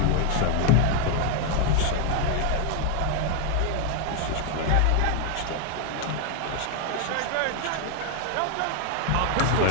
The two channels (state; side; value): different; both; correlation 0.00